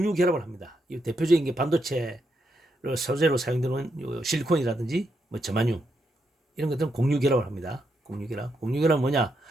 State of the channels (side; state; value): both; normal; correlation 0.81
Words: 결합을 합니다. 이 대표적인 게 반도체 소재로 사용되는 실리콘이라든지 뭐 저마늄 이런 것들은 공유 결합을 합니다. 공유 결합. 공유 결합은 뭐냐?